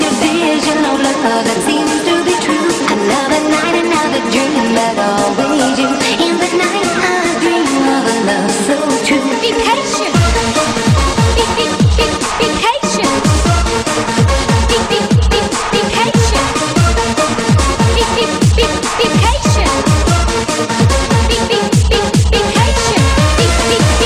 vision of love that seems to be true? Another night, another dream, but always you. In the night I dream of a love so true. Be patient. Be patient. Be patient. Be patient.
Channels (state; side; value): identical; both; correlation 1.00